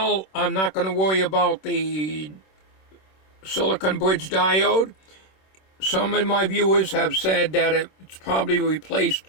I'm not going to worry about the silicon bridge diode. Some of my viewers have said that it's probably replaced.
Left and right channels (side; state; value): right; late; 26 ms